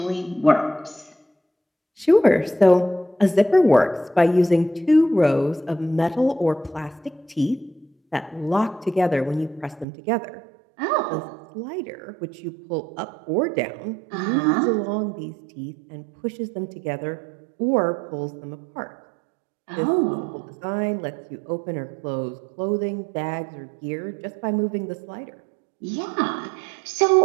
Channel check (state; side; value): drops out; left; at 9.9 s